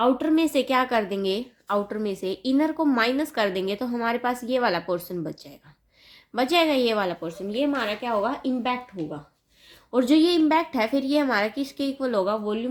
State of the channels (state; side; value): identical; both; correlation 1.00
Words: में से क्या कर देंगे, आउटर में से इनर को माइनस कर देंगे तो हमारे पास ये वाला पोर्शन बच जाएगा ये वाला पोर्शन, ये हमारा क्या होगा, इम्पैक्ट होगा। और जो ये इम्पैक्ट है फिर ये हमारा किसके इक्वल होगा,